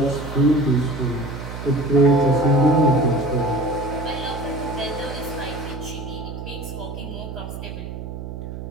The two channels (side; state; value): right; noise; hum, 9 dB below the sound